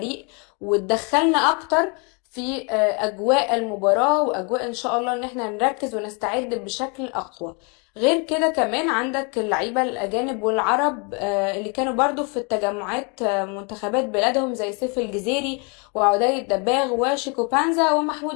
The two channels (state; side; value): quieter; right; 33.8 dB